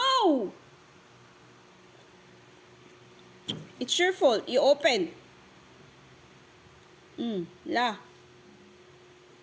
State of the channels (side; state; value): both; identical; correlation 1.00